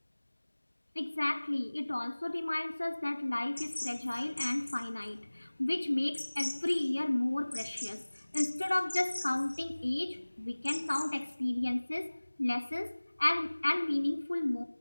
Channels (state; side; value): inverted; both; correlation -1.00